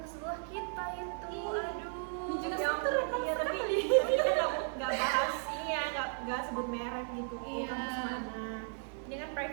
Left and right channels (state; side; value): silent; left; 54 dB below the other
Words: sebelah kita itu. Aduh. Ini juga Yang- sektor iya, tapi kita nggak bahas ini ya, nggak sebut merek gitu. Iya. Kampus mana. Ini kan